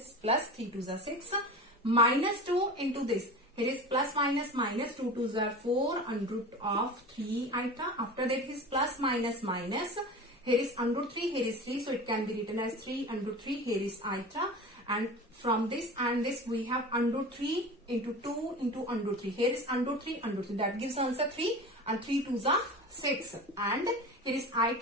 plus 3 2s are 6. Minus 2 into this, here is plus minus minus 2 2s are 4 under root of 3 iota. After that is plus minus minus, here is under 3, here is 3, so it can be written as 3 under 3, here is iota. and from this and this we have under root 3 into 2 into under root 3. Here is under root 3, that gives answer 3, and 3 2s are 6, and here is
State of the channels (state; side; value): normal; both; correlation 0.33